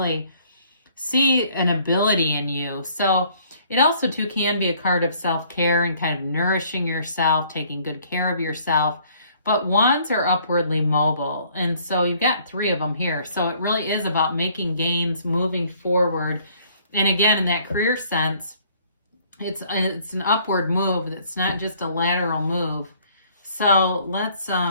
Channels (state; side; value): inverted; both; correlation -0.60